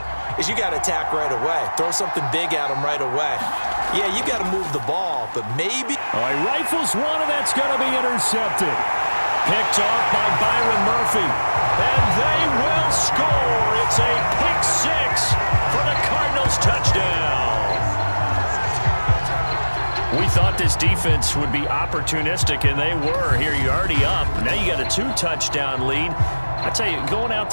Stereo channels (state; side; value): inverted; both; correlation -1.00